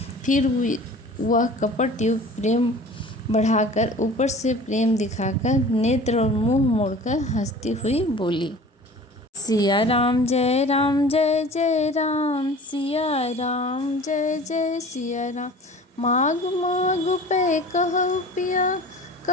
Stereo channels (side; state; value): both; normal; correlation 0.42